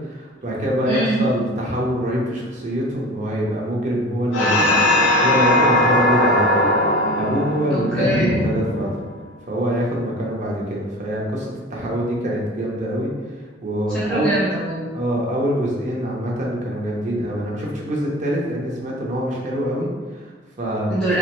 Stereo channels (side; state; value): both; normal; correlation 0.38